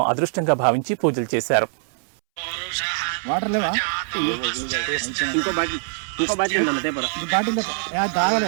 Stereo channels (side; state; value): left; silent; 64 dB below the other